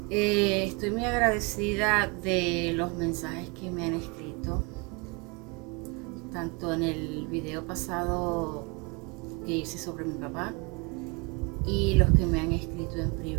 estoy muy agradecida de los mensajes que me han escrito, tanto en el video pasado que hice sobre mi papá y los que me han escrito en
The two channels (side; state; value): left; quieter; 30.0 dB